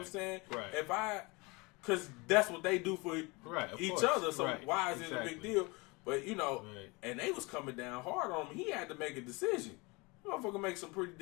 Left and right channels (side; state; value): right; quieter; 26.2 dB